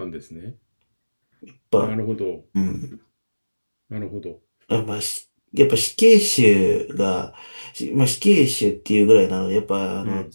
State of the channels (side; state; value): both; inverted; correlation -1.00